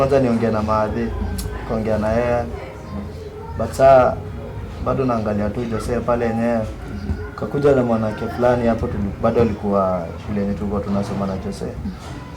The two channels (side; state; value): both; identical; correlation 1.00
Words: niongee na Maadhi, kaongea na yeye. But saa bado naangalia tu Jose pale yenyewe. Kakuja na mwanamke fulani hapo bado alikuwa shule yetu tulikuwa tunasoma na Jose.